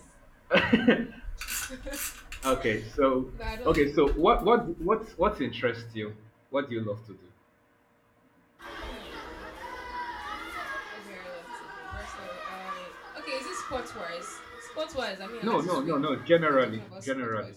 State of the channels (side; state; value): both; identical; correlation 1.00